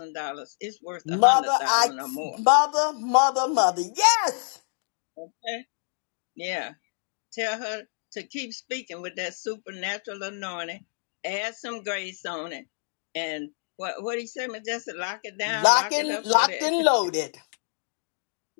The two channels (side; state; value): right; silent; digital silence